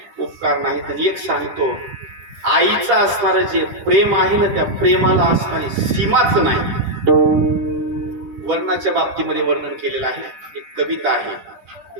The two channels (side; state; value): left; late; 10 ms